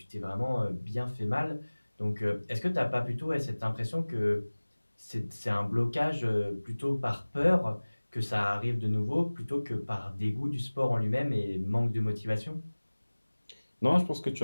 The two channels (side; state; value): both; inverted; correlation -1.00